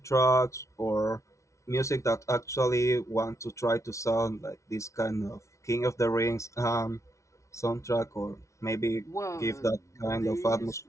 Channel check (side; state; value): right; late; 0.14 ms